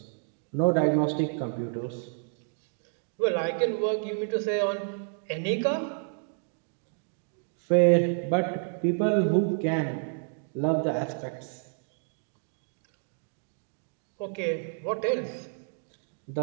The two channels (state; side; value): silent; left; 58 dB below the other